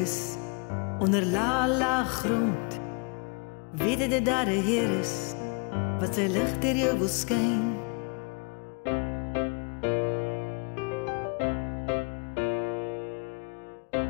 onder laag grond. Weet jy dat daar 'n Heer is wat sy lig deur jou wil skyn.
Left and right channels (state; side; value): quieter; right; 34.1 dB